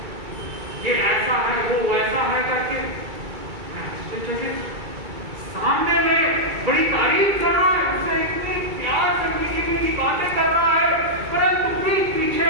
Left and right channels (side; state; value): left; late; 2.3 ms